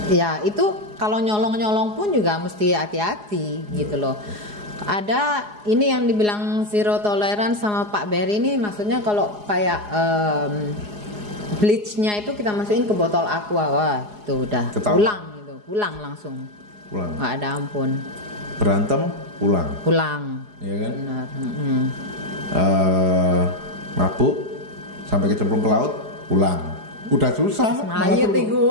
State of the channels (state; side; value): late; left; 4.8 ms